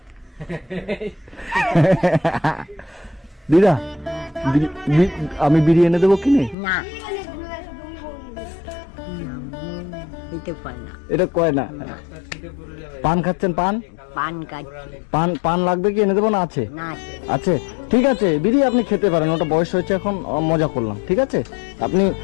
দিদা আমি বিড়ি এনে দেবো কিনে? না, দিতে পারে না। এটা কয় না। পান খাচ্ছেন? পান পান কাটছে পান পান লাগবে কি, এনে দেবো না? আছে, না, আছে, ঠিক আছে। বিড়ি আপনি খেতে পারেন, ওটা বয়স হয়েছে এখন, মজা করলাম, ঠিক আছে। আপনি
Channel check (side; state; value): right; drops out; at 6.6 s